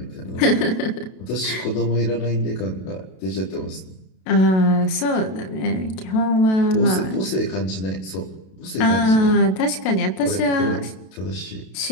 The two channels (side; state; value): right; late; 32 ms